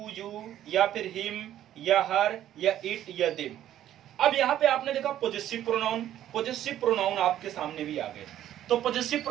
या फिर हिम या हर या इट या देम। अब यहाँ पे आपने देखा पॉजेसिव प्रोनाउन, पॉजेसिव प्रोनाउन आपके सामने भी आ गए। तो पॉजेसिव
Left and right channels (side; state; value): left; quieter; 12.0 dB